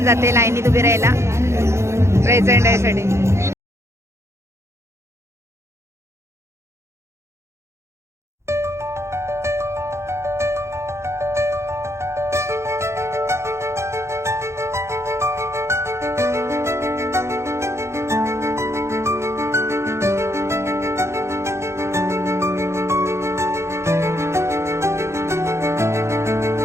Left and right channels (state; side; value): late; left; 0.13 ms